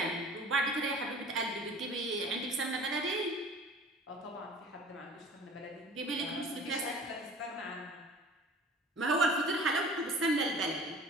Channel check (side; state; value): both; normal; correlation 0.45